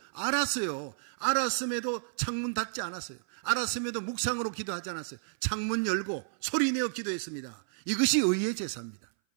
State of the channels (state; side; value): silent; left; 57 dB below the other